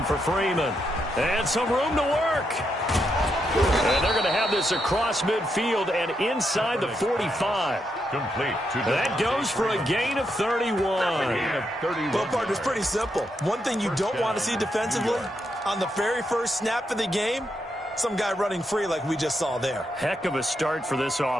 for Freeman. And some room to work. And they're going to have this across midfield and inside the 45. Complete. That goes for a gain of 31. Well, partner, it's pretty simple. One thing you don't want to see defensively, on the very first snap of the game, some guy running free like we just saw there. Heck of a start for this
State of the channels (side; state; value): both; normal; correlation 0.81